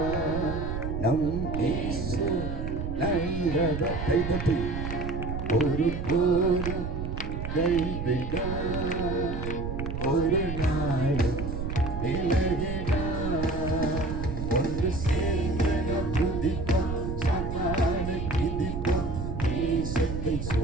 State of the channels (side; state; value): right; noise; rumble, 4 dB below the sound